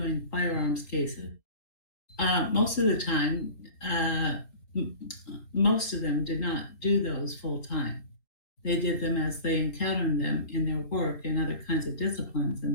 firearms cases. Most of the time, most of them did not do those full time. They did them as they encountered them in their work and other kinds of disciplines in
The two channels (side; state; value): right; late; 4.0 ms